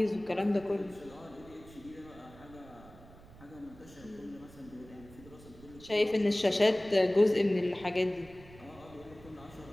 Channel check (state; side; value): noise; right; rumble, 20 dB below the sound